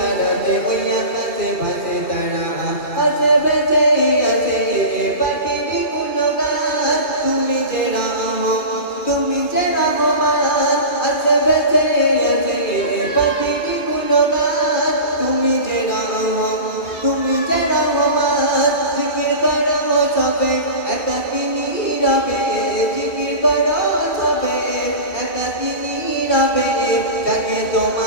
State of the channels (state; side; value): late; right; 2.4 ms